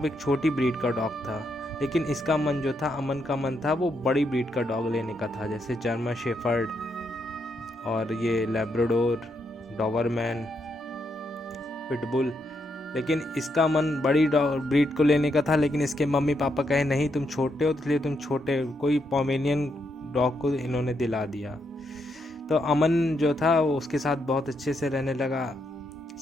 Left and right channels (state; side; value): normal; both; correlation 0.79